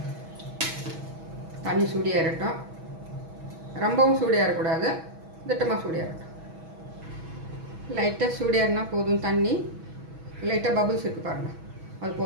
தண்ணி சூடியாகட்டும், ரொம்பவும் சூடியாகக்கூடாது, திட்டமாக சூடியாகட்டும். லைட்டாக சூடியாருன்னா போதும். தண்ணி லைட்டாக பபுள்ஸ் இருக்குது பாருங்கள், அது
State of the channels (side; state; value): left; late; 6.2 ms